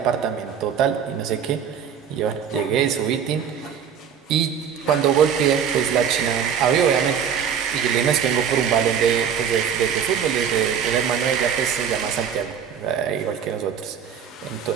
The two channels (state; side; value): quieter; left; 7.8 dB